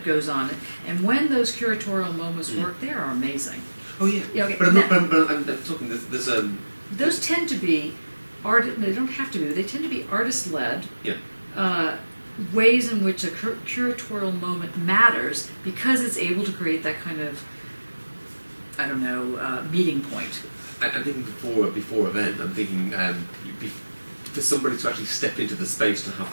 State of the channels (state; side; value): inverted; both; correlation -1.00